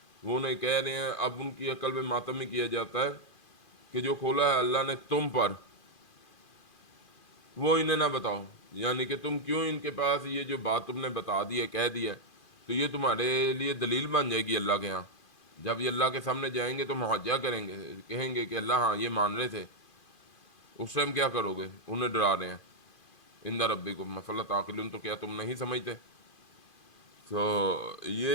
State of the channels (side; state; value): right; late; 2.5 ms